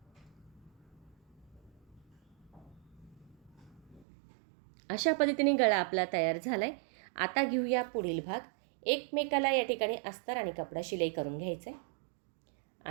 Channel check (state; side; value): drops out; left; at 4.0 s